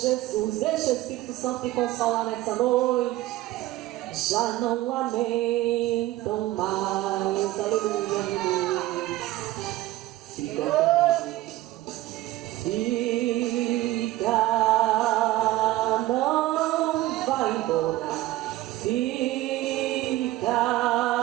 Deixa o Espírito Santo te consolar nessa noite. Já não lamentam mais. Aleluia. Fica, não vai embora. Fica,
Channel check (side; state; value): left; quieter; 16.7 dB